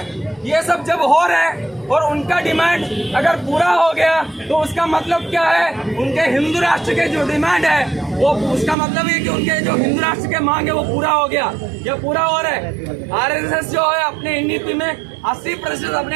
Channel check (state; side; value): drops out; left; at 8.8 s